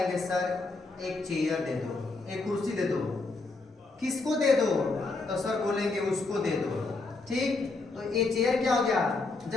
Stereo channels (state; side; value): quieter; right; 3.6 dB